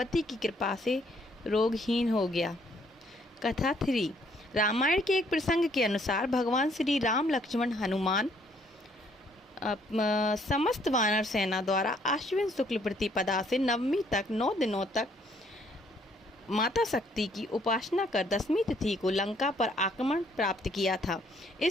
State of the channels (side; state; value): both; normal; correlation 0.65